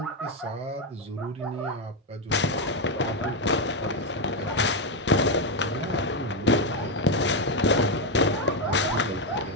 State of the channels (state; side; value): normal; both; correlation 0.07